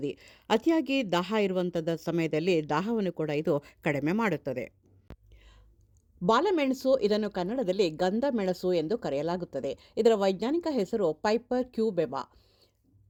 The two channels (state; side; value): identical; both; correlation 1.00